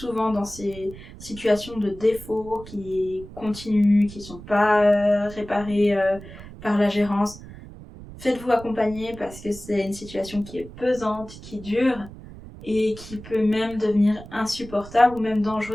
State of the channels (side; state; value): right; noise; rumble, 16 dB below the sound